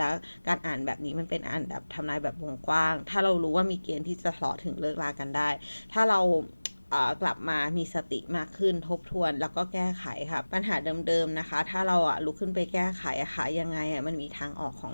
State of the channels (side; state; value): both; inverted; correlation -1.00